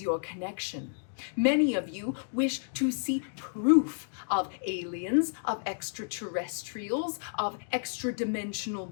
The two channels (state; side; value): silent; right; digital silence